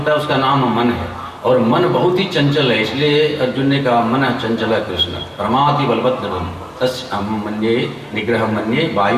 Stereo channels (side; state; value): both; identical; correlation 1.00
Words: है उसका नाम मन है। और मन बहुत ही चंचल है, इसलिए अर्जुन ने कहा मन चंचल कृष्ण प्रमाति बलभद्रम तस्य अहं मन्ये निग्रह मन्ये